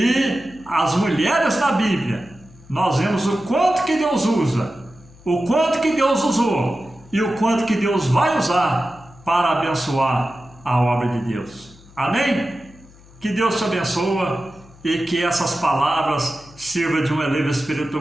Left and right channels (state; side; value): noise; left; hum, 24 dB below the sound